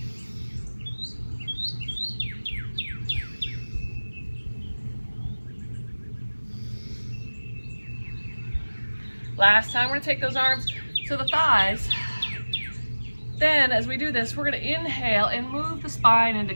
Last time, we're gonna take those arms to the thighs. Then, as we do this, we're gonna inhale and move the spine into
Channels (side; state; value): both; inverted; correlation -1.00